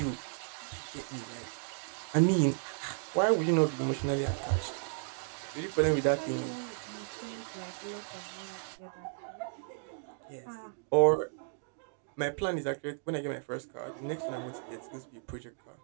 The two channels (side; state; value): left; silent; digital silence